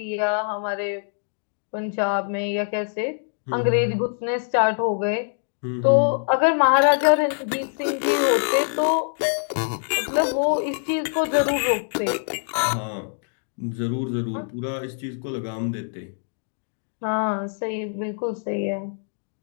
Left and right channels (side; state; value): right; silent; 62 dB below the other